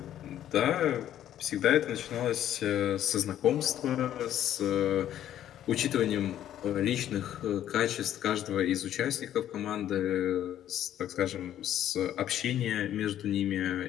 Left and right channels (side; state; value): right; quieter; 11.4 dB